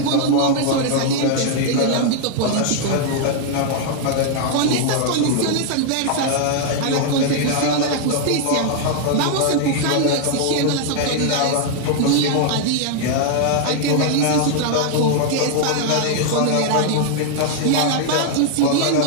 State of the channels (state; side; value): different; both; correlation 0.00